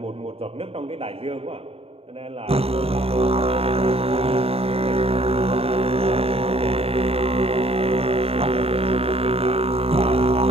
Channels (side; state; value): left; late; 0.28 ms